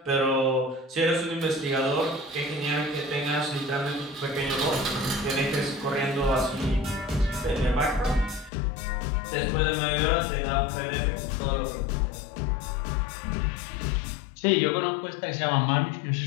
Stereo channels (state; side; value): drops out; right; at 8.5 s